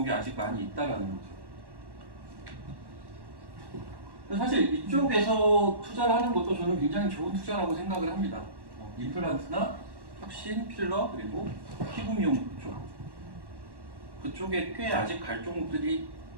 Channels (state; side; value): late; left; 1.1 ms